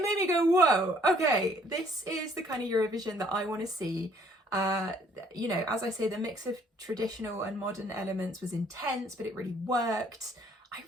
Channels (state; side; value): normal; both; correlation 0.61